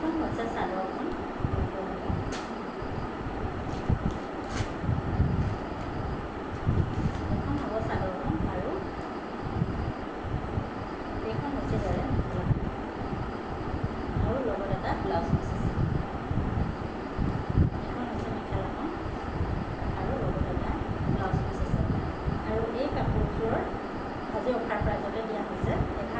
হৈছে চাদৰখন। এইখন হ'ব চাদৰখন। আৰু এইখন হৈছে ইয়াৰে মেখেলাখন। আৰু লগত এটা ব্লাউজ পিচ আছে। এইখন হৈছে মেখেলাখন।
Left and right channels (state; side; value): identical; both; correlation 1.00